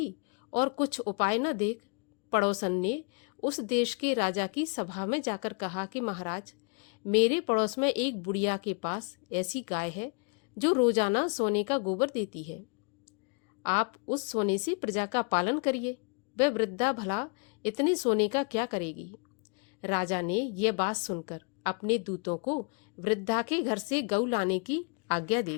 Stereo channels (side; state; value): right; quieter; 36.7 dB